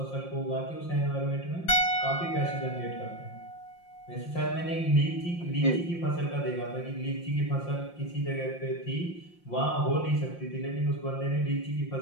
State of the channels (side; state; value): right; late; 5.7 ms